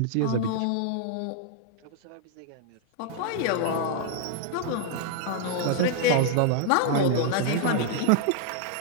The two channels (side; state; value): both; different; correlation -0.01